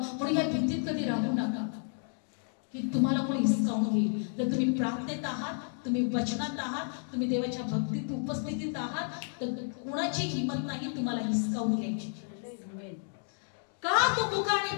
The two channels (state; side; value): silent; right; 57 dB below the other